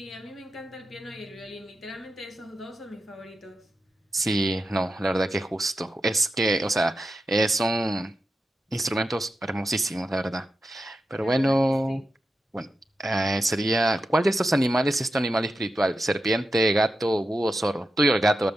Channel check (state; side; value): normal; both; correlation 0.89